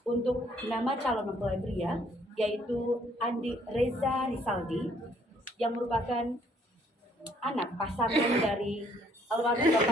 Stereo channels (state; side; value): normal; both; correlation 0.65